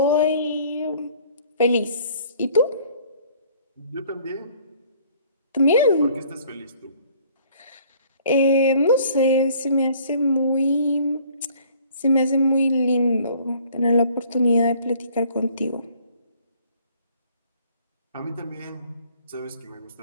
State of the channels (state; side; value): inverted; both; correlation -0.56